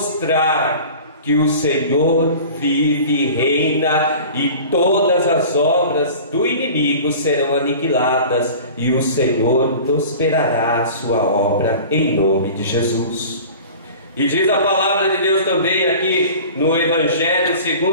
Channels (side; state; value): both; inverted; correlation -0.40